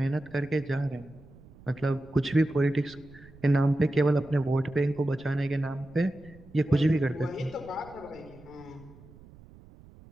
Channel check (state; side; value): noise; right; rumble, 22 dB below the sound